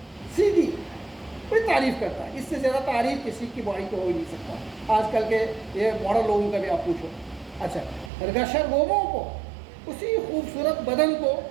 सीधी कोई तारीफ़ करता है। इससे ज़्यादा तारीफ़ किसी की बॉडी को हो ही नहीं सकता। आजकल के ये मॉडल लोगों का भी आप पूछो। अच्छा, रगशर गोमों को, उसी खूबसूरत बदन को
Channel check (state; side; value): drops out; left; at 8.1 s